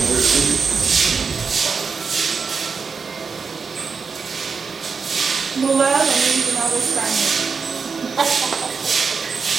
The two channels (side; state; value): left; quieter; 5.3 dB